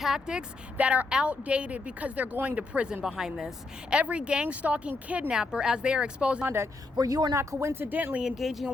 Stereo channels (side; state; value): right; quieter; 3.4 dB